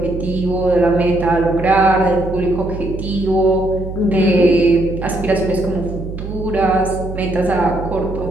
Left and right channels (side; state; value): right; noise; hum, 8 dB below the sound